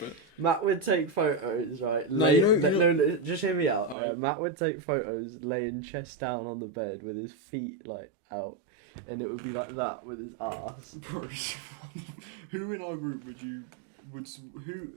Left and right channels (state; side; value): drops out; left; at 4.0 s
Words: Matt would take photos, right? No, just hear me out. Right. Matt would take photos laying chest down on the bed with his feet, like, out. And it would be like that with his ass. Bro, who in our group who